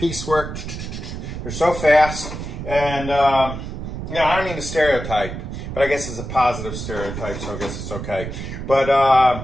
They're so fast. And you know, I don't mean to stereotype, but I guess it's a positive stereotype, so I guess it's okay. But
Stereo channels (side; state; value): right; noise; rumble, 7 dB below the sound